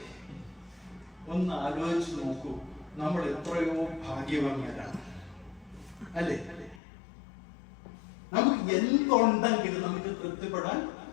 ഒന്ന് ആലോചിച്ച് നോക്കൂ. നമ്മൾ എത്രയോ ഭാഗ്യവാന്മാരാണ്, അല്ലേ? നമുക്ക് എന്തുണ്ടെങ്കിലും നമുക്ക് തൃപ്തിപ്പെടാൻ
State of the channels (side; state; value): right; drops out; at 6.8 s